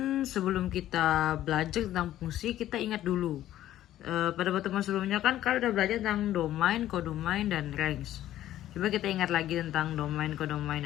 sebelum kita belajar tentang fungsi, kita ingat dulu. Pada pertemuan sebelumnya kan kalian udah belajar tentang domain, kodomain, dan range. Coba kita ingat lagi tentang domain,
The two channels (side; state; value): right; quieter; 13.1 dB